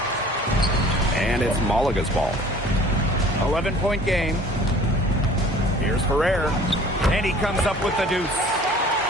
And it's Malaga's ball. 11-point game. Here's Ferrer. And he comes up with the deuce.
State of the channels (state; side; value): normal; both; correlation 0.49